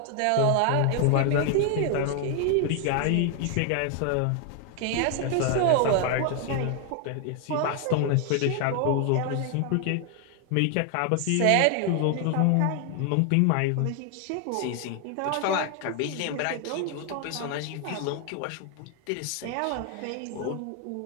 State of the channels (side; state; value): both; different; correlation 0.00